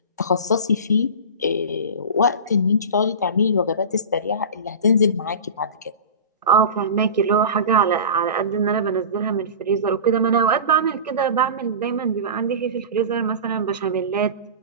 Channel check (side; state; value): both; inverted; correlation -0.31